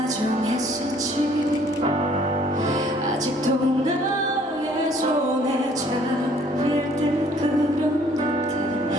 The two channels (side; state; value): both; normal; correlation 0.59